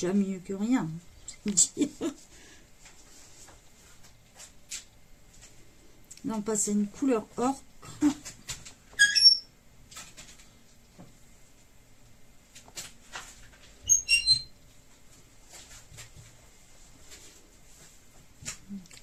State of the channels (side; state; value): both; identical; correlation 1.00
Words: mieux que rien. Là, on passe à une couleur ocre.